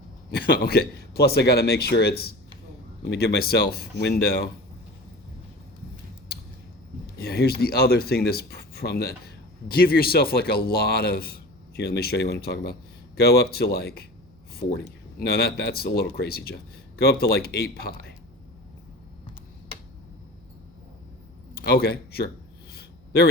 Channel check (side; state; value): right; noise; hum, 29 dB below the sound